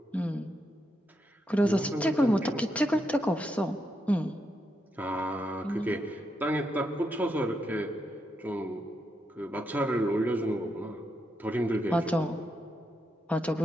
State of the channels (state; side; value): normal; both; correlation 0.82